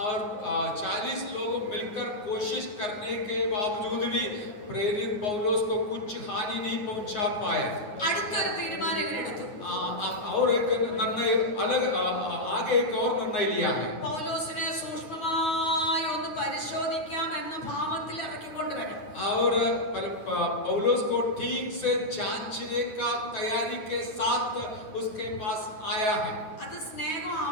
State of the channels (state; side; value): late; right; 9.8 ms